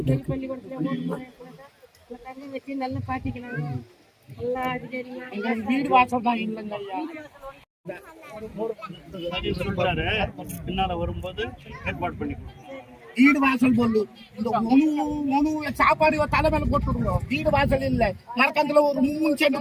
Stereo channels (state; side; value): identical; both; correlation 1.00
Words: தண்ணி வச்சு நல்லா பாத்திக்கிறாங்க. நல்லா அதிகாரிங்க வீடு வாசல் தான் இல்லைங்க ஐயா. பின்னால வரும்போது ஏற்பாடு பண்ணி வீடு வாசல் போடணும். இந்த உணவு சாப்பாடு தலைமையில போட்டுடுங்க. வீடு வாசல் இல்லை. மரக்கத்துல ஒரு 3